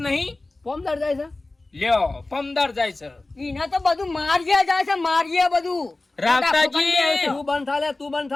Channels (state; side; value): quieter; right; 3.0 dB